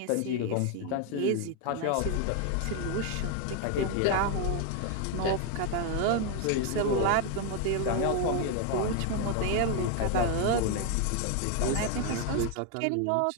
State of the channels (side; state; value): both; different; correlation 0.01